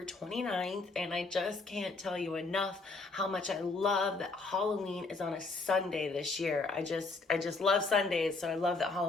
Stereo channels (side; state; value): right; quieter; 3.7 dB